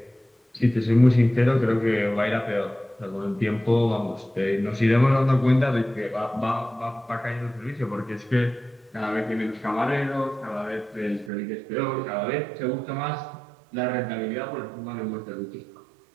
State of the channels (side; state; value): left; drops out; at 11.3 s